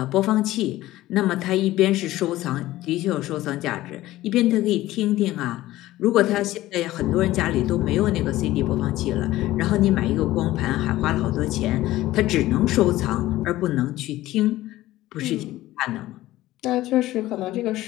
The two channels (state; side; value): quieter; right; 16.1 dB